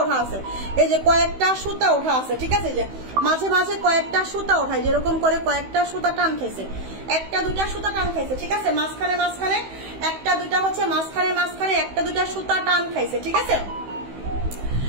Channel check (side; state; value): left; late; 16 ms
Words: ওঠা আছে, এই যে কয়েকটা সুতা ওঠা আছে, ঠিক আছে। যে মাঝে মাঝে কয়েকটা সুতা ওঠায়, যেরকম করে কয়েকটা সুতা টান খাইছে, একটা দুইটা সুতা টান খাইছে, ঠিক আছে। মাঝখানে মাঝখানে একটা দুইটা হচ্ছে মাঝখানে মাঝখানে একটা দুইটা সুতা টান খাইছে, ঠিক আছে।